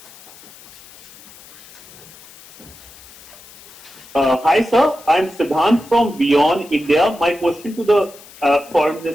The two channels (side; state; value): left; noise; hiss, 21 dB below the sound